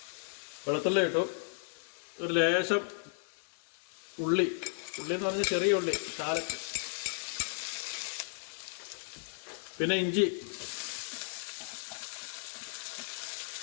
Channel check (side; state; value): right; silent; digital silence